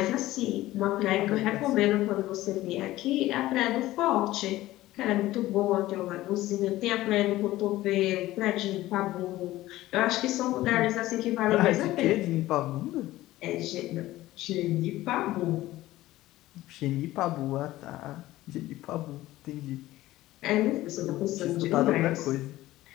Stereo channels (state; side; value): quieter; right; 16.3 dB